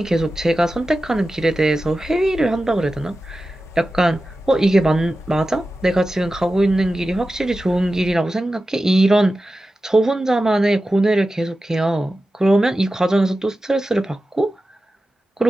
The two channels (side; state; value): both; normal; correlation 0.93